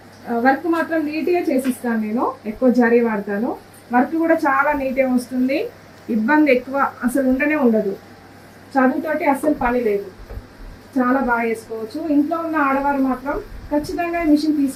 వర్క్ మాత్రం నీట్గా చేసిస్తాను. నేను ఎక్కువ జరీ వాడతాను. వర్క్ కూడా చాలా నీట్గా వస్తుంది. ఇబ్బంది ఎక్కువ అసలు ఉండదు. చదువుతోటి అస్సలు పని లేదు. చాలా బాగా చేసుకోవచ్చు. ఇంట్లో ఉన్న ఆడవారు మాత్రం ఖచ్చితంగా మిషన్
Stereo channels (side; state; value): both; identical; correlation 1.00